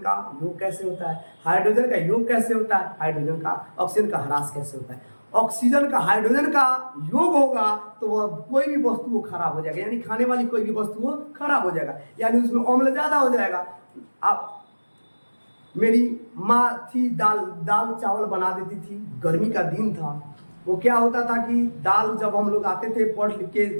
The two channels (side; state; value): both; inverted; correlation -1.00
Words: योग कैसे होता है, हाइड्रोजन का योग कैसे होता है, हाइड्रोजन का ऑक्सीजन का ह्रास कैसे होता है। ऑक्सीजन का हाइड्रोजन का योग होगा तो वह कोई भी वस्तु वो खराब हो जाएगा, यानी खाने वाली कोई भी वस्तु वो खराब हो जाएगा, यानी उसमें अम्ल ज्यादा हो जाएगा। आप मेरी माँ थी, दाल चावल बना देती थी, गर्मी का दिन था। वो क्या होता था कि दाल जब हम लोग आते थे पढ़ लिख के